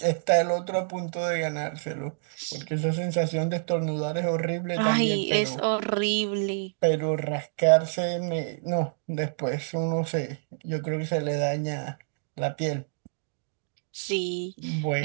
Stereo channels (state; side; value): silent; left; digital silence